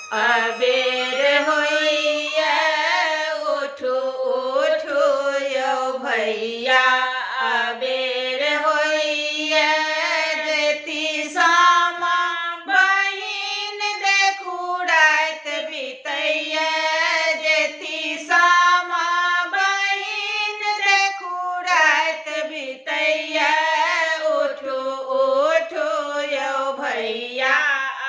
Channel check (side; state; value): both; identical; correlation 1.00